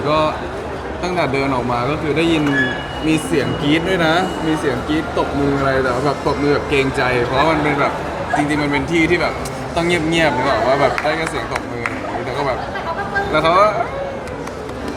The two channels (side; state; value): both; identical; correlation 1.00